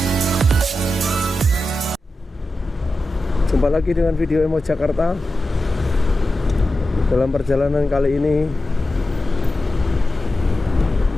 Jumpa lagi dengan video Emos Jakarta. Dalam perjalanan kali ini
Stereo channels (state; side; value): normal; both; correlation 0.92